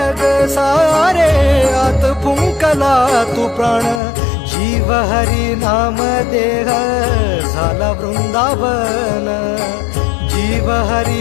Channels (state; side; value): drops out; right; at 4.0 s